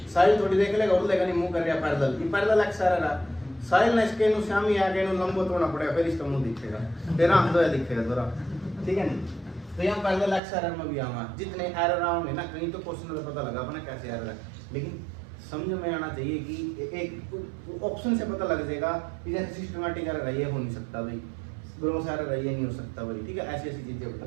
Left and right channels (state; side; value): drops out; left; at 10.4 s